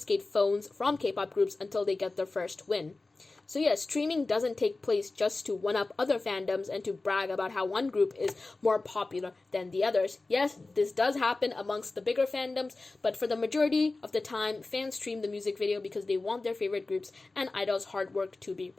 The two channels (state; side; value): quieter; right; 3.4 dB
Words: phones from K-pop groups until they get their first win. So yes, streaming doesn't take place just to one-up other fandoms and to brag about how one group is more popular than the others. Yes, this does happen amongst the bigger fandoms, but for the majority of the time, fans stream the music video because they want their favorite groups and idols' hard work to be